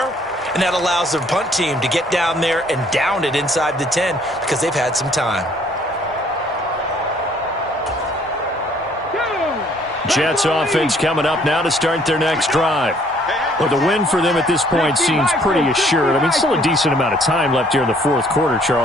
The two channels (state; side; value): normal; both; correlation 0.61